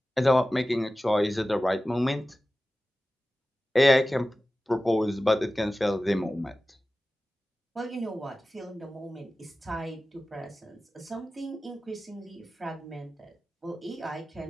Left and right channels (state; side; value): normal; both; correlation 0.95